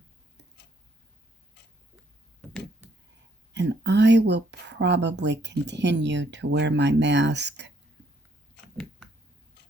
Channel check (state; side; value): normal; both; correlation 0.69